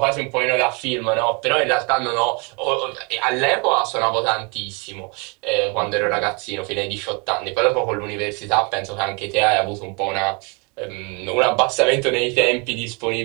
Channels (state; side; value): quieter; left; 31.9 dB